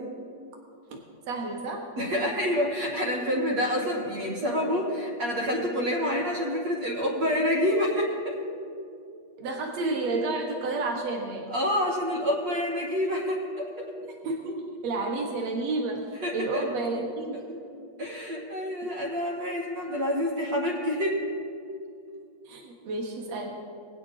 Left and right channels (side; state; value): left; late; 8.4 ms